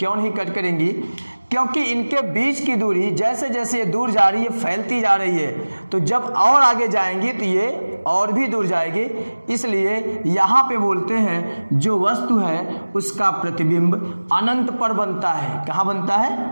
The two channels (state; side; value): inverted; both; correlation -1.00